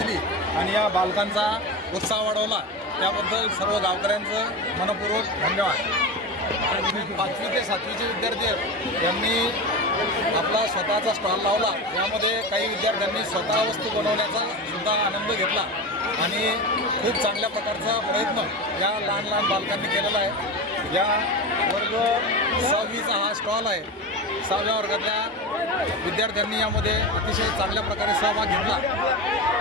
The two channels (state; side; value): normal; both; correlation 0.23